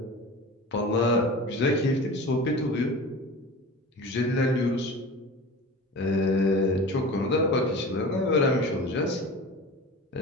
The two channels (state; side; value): normal; both; correlation 0.35